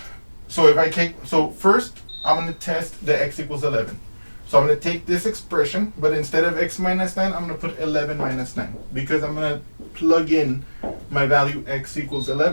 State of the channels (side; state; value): both; inverted; correlation -1.00